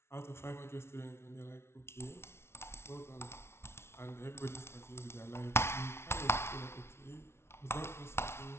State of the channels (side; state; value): right; late; 0.12 ms